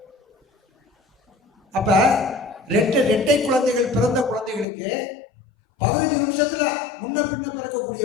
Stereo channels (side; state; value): right; drops out; at 4.7 s